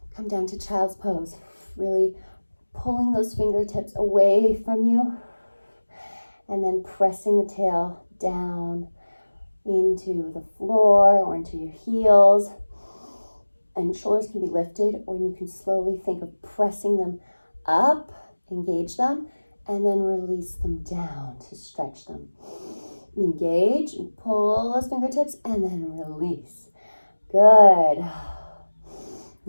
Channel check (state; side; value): inverted; both; correlation -1.00